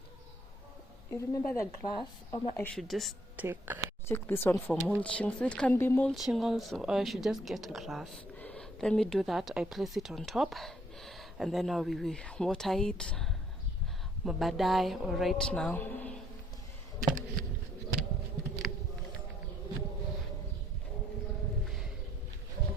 you remember the grass? I should just take this one for mulching. So it can be mulching also, or I should just get grass. Let me do that. I place it on top, and then we will water it. Mabadai or right now.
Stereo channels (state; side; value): normal; both; correlation 0.66